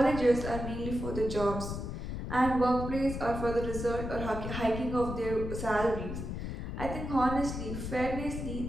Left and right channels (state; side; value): noise; left; rumble, 5 dB below the sound